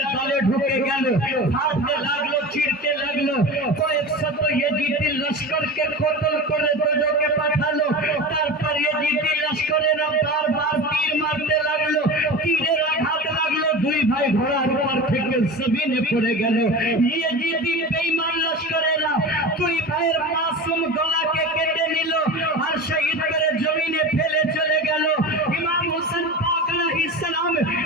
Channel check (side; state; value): both; normal; correlation 0.30